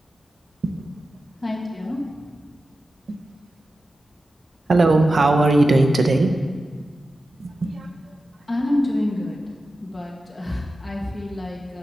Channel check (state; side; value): normal; both; correlation 0.93